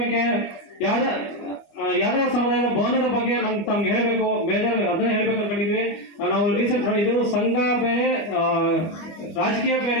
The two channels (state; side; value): late; right; 25 ms